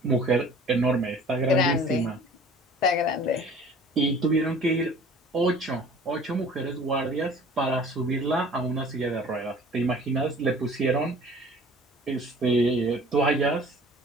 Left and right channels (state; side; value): normal; both; correlation 0.47